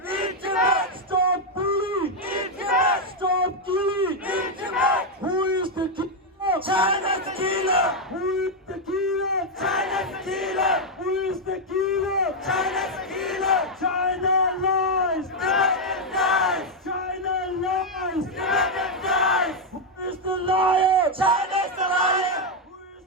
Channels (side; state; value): both; normal; correlation 0.01